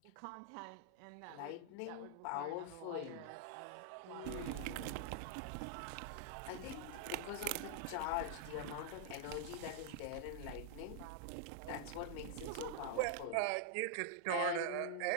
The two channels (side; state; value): both; different; correlation -0.01